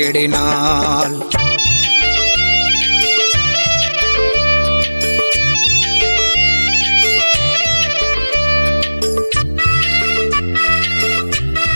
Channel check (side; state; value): both; inverted; correlation -1.00